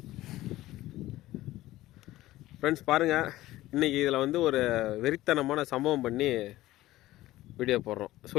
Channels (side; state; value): right; quieter; 16.2 dB